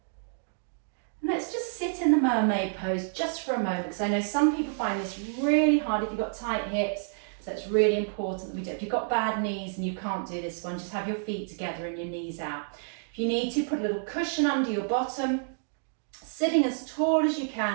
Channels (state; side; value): silent; left; digital silence